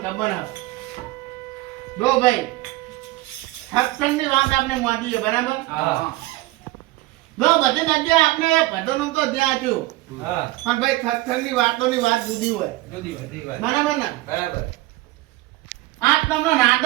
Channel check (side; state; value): left; quieter; 18.9 dB